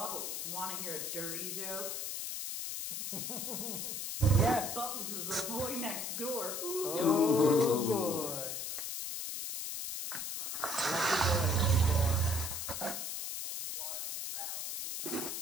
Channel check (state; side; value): noise; left; hiss, 4 dB below the sound